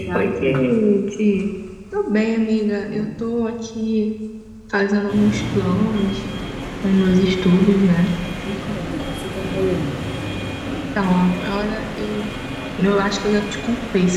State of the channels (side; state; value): both; identical; correlation 1.00